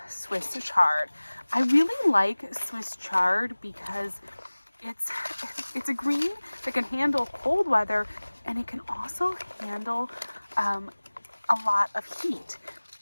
Swiss chard. I really like Swiss chard because it's a green that can handle cold weather, and it can also handle a lot of heat.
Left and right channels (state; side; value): inverted; both; correlation -1.00